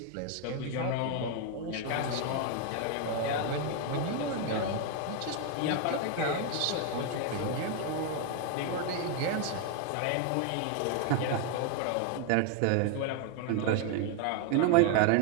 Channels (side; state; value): both; different; correlation 0.01